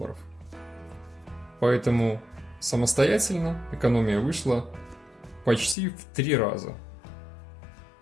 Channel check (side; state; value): right; drops out; at 5.8 s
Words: Поэтому самостоятельно экономия вышла почти в 3 раза.